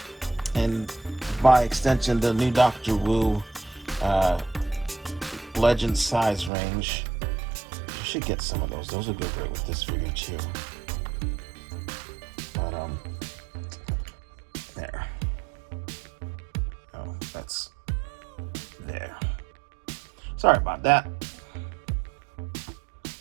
and by extension the new Doctor Wu Legend size range. You should get some of those. Those would go great with this figure too. But there. Oh, that's there. Sorry about that.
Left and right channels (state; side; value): drops out; left; at 6.5 s